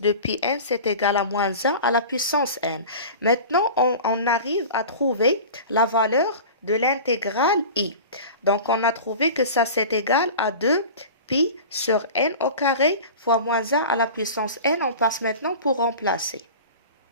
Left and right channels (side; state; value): both; inverted; correlation -0.35